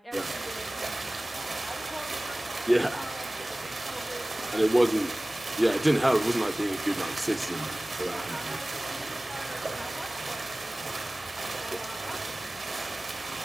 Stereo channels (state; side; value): normal; both; correlation 0.98